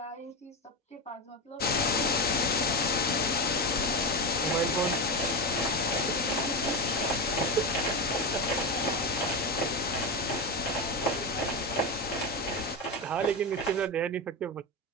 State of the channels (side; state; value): both; normal; correlation 0.15